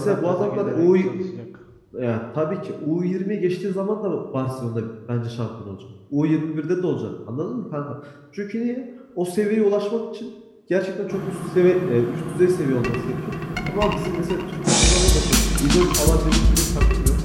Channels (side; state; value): both; identical; correlation 1.00